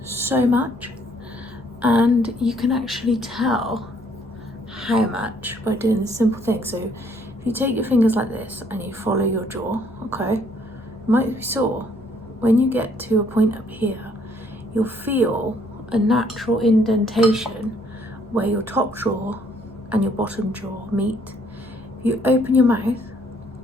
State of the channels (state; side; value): normal; both; correlation 0.65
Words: so much, and you can actually tell how much by doing this simple thing. So if you take your fingers like this and you follow your jaw, okay, it might be sore. When you get to a point up here, you'll feel a natural indentation where your top jaw and your bottom jaw meet. If you open your mouth,